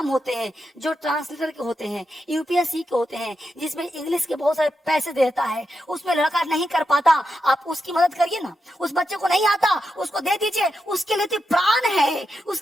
होते हैं जो ट्रांसलेटर के होते हैं, यूपीएससी के होते हैं, जिसमें इंग्लिश के बहुत सारे पैसे देता है, उसमें लड़का नहीं कर पाता, आप उसकी मदद करिए ना। उस बच्चे को नहीं आता, उसको दे दीजिए, उसके लिए तो प्राण है,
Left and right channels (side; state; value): both; normal; correlation 0.86